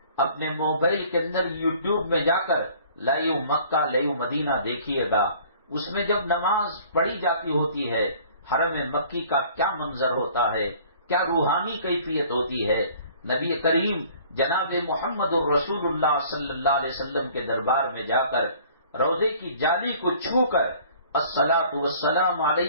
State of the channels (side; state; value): both; inverted; correlation -0.53